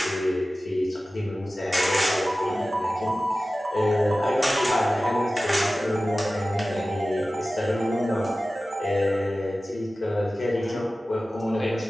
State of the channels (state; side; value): normal; both; correlation 0.96